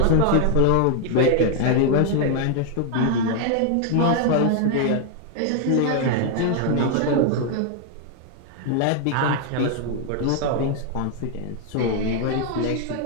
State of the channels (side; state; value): both; different; correlation 0.00